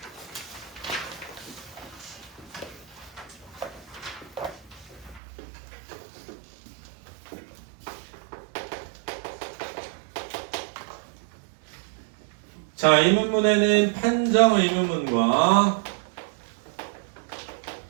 자, 의문문에는 판정 의문문과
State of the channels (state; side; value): drops out; left; at 5.2 s